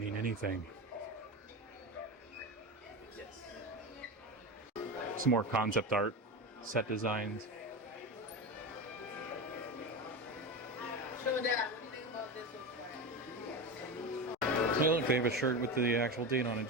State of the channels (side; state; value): both; normal; correlation 0.21